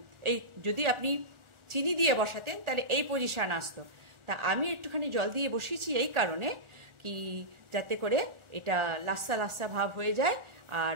এই যদি আপনি চিনি দিয়ে বসাতেন তাহলে এই পজিশান আসতো। তা আমি একটুখানি জল দিয়ে বসিয়েছি এই কারণে কি, যাতে করে এটা লাস্সা লাস্সা ভাব হয়ে যায় আর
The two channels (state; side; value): late; left; 1.4 ms